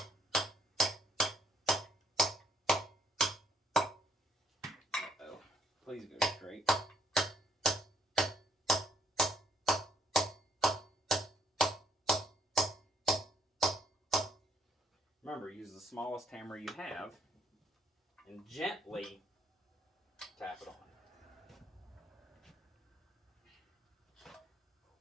Uh-oh. Please go straight. Remember, use the smallest hammer you have and gently tap it on. Oh,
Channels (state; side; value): normal; both; correlation 0.67